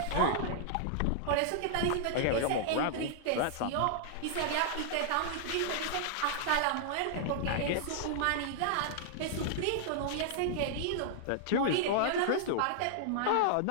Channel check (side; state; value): both; different; correlation -0.01